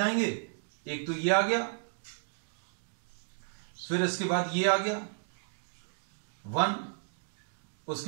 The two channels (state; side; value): silent; left; digital silence